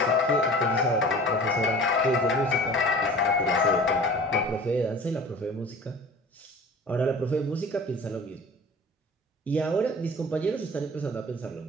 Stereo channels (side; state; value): both; normal; correlation 0.42